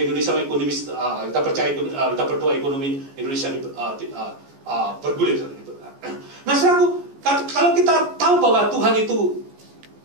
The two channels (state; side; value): late; left; 14 ms